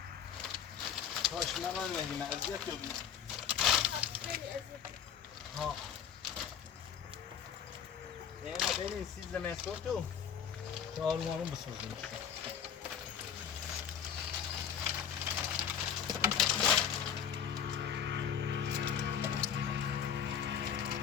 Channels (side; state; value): right; quieter; 8.4 dB